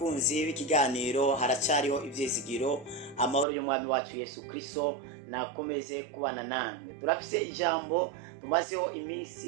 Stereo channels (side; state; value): left; drops out; at 3.5 s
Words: b'ikiganiro haracyariho ivyizigiro. Amahoro y'umwami wacu Yesu Kristo nakomeze kubana namwe. Turafise ijambo tumazeho